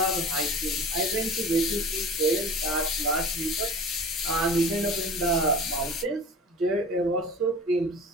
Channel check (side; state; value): both; normal; correlation 0.38